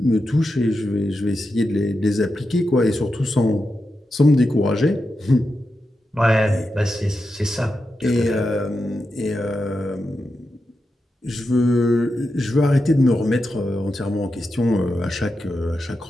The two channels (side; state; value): both; normal; correlation 0.88